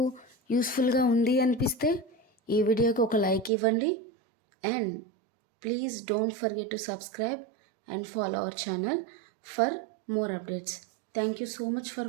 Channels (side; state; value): left; drops out; at 3.5 s